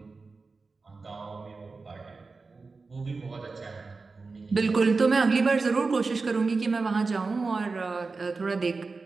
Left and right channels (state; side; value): quieter; left; 4.1 dB